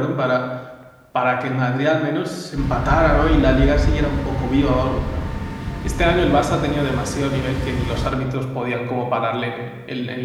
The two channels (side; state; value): both; identical; correlation 1.00